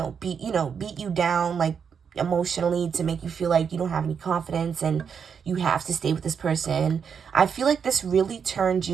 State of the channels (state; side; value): quieter; left; 6.8 dB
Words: beat you down, like emotionally, to make you feel like you don't have any confidence and you have to stay with this person. I feel like this really turned